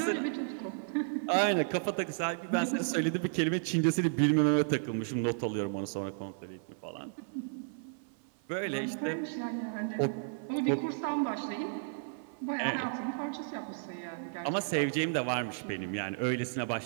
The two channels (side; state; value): left; silent; 56 dB below the other